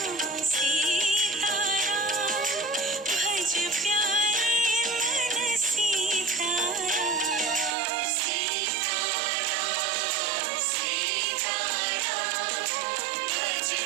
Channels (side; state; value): left; drops out; at 7.8 s